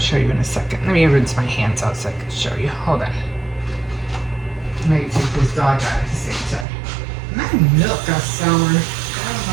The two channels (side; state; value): left; drops out; at 6.7 s